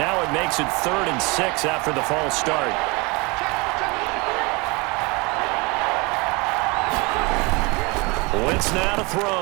it makes it 3rd and 6 after the false start. Wentz now to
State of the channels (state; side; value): quieter; left; 27.0 dB